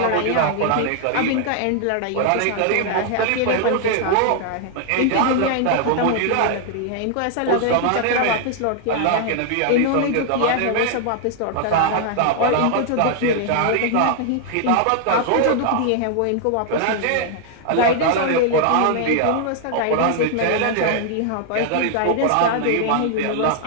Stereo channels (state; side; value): different; both; correlation 0.00